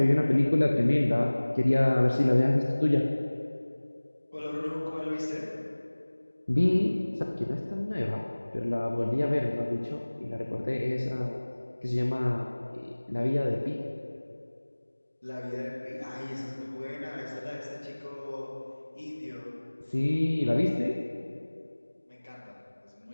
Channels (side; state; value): both; inverted; correlation -1.00